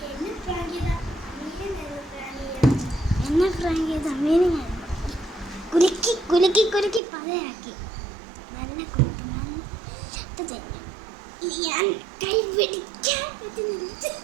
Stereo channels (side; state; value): left; drops out; at 7.0 s